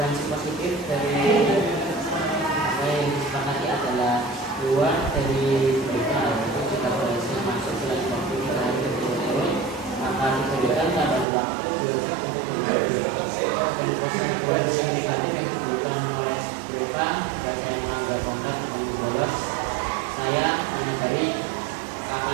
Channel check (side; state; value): left; drops out; at 11.2 s